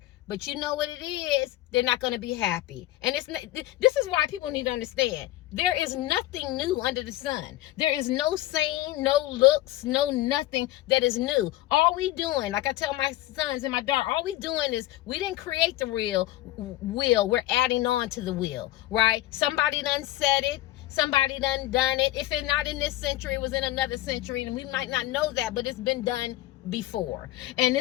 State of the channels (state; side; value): quieter; right; 15.6 dB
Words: But you know what it is? They're not going to be happy. And this is why people need to understand. There is nothing new under the sun. There is no saying, no looks, no nothing that is new. All we doing, like I tell my sons and my daughter, all we doing is we didn't create the real wheel. We're adding on to the wheel, right? Somebody done said it. Somebody done it. If it's not in this century, it was in another century, and we might not know that, but it's been done before. And